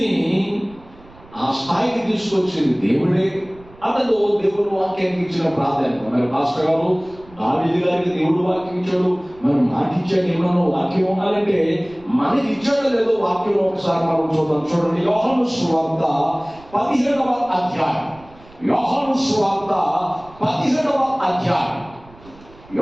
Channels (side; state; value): right; noise; rumble, 24 dB below the sound